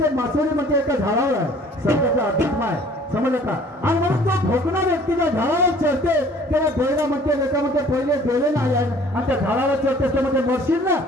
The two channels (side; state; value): both; normal; correlation 0.53